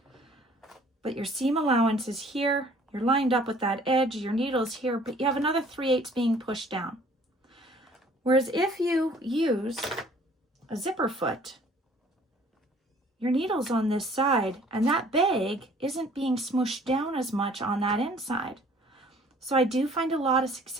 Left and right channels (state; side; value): normal; both; correlation 0.55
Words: but your seam allowance is here, you're lined up with that edge, your needle's here, but you have another 3/8 being pushed down. Whereas if you use a zipper foot, your needle's on this side and that bag isn't being smooshed down as much on that inside. So I do find a lot of